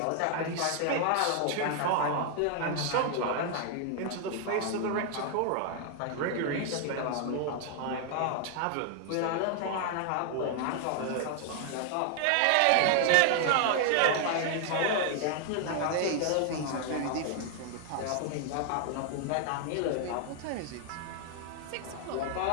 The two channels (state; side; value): different; both; correlation 0.00